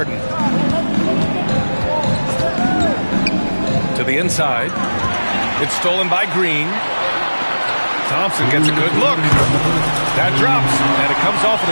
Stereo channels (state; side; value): inverted; both; correlation -1.00